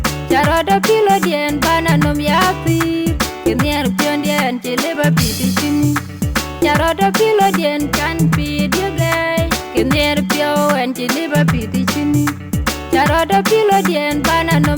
Nyarada kilo dien bana nom yapi, kinyer pio dien chiliba pi di chini. Nyarada kilo dien kan pi dige, kinyer pio en chiliba pi di chini. Nyarada kilo dien bana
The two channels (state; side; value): identical; both; correlation 1.00